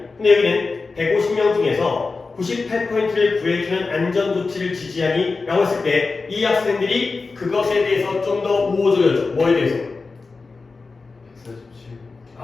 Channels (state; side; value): quieter; right; 4.1 dB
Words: 근데 여기는 150명 중에서 98%를 구해주는 안전조치를 지지하니? 라고 했을 때 이 학생들이 그것에 대해서 좀 더 우호적이었죠. 뭐에 대해서?